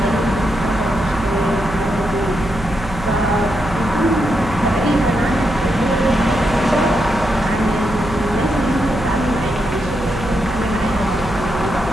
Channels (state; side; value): noise; right; hum, 11 dB below the sound